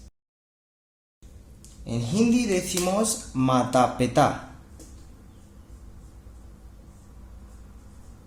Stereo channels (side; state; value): both; identical; correlation 1.00